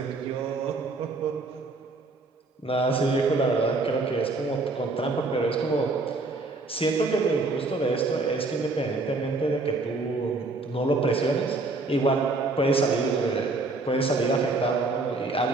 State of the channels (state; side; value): quieter; left; 3.4 dB